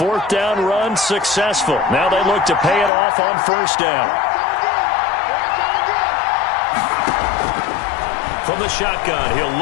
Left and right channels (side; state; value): right; drops out; at 2.9 s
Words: down run successful. Now they look to pay it off on 1st down. From the shotgun, he'll